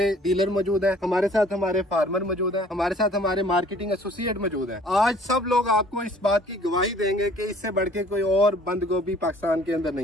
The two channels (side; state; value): both; normal; correlation 0.54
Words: डीलर मौजूद है, हमारे साथ हमारे फार्मर मौजूद है, हमारे साथ हमारे मार्केटिंग एसोसिएट मौजूद है। आज सब लोग आपको इस बात की गवाही देंगे कि इससे बढ़ के कोई और बंद गोभी पाकिस्तान के अंदर